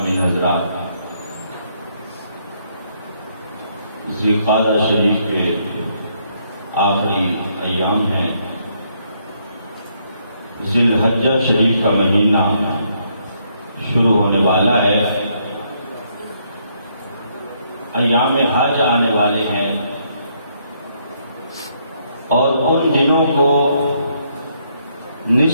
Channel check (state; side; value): inverted; both; correlation -0.72